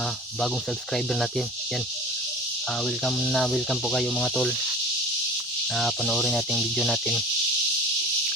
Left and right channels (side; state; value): both; normal; correlation 0.39